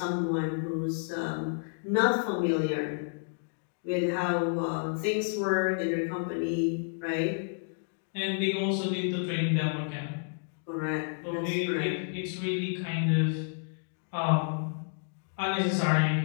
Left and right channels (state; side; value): silent; right; digital silence